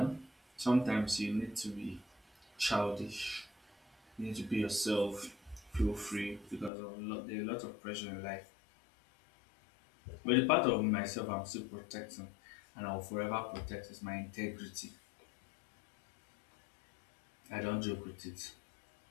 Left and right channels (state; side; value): drops out; right; at 6.7 s